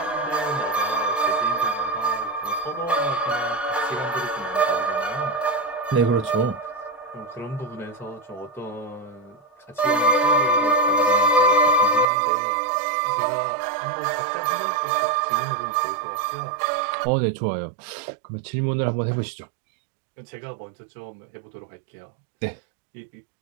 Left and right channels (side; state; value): left; drops out; at 12.1 s